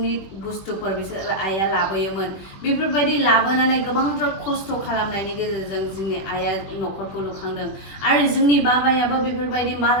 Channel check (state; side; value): late; right; 21 ms